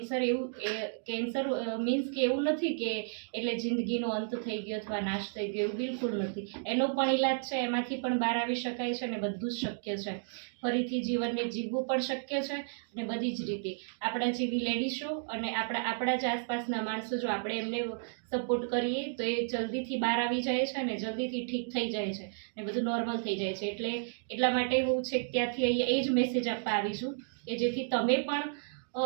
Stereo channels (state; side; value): silent; left; digital silence